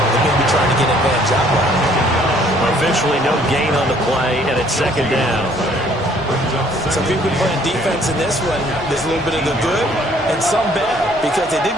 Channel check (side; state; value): both; normal; correlation 0.60